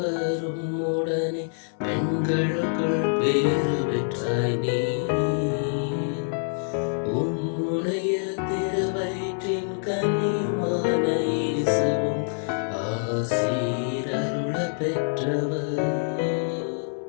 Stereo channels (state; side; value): silent; right; digital silence